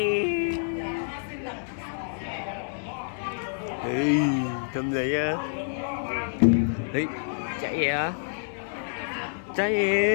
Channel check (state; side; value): silent; right; digital silence